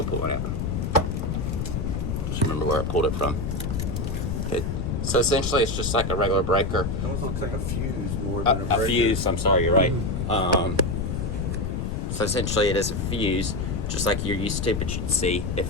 pull one out. Just remember where I pulled it from. Okay. So essentially, it's just like a regular breaker. It almost looks like a fuse more than a breaker. A fuse. I'm sorry, you're right. So essentially, it is a fuse, just like you're used to. But you'd see if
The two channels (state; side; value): noise; left; rumble, 2 dB below the sound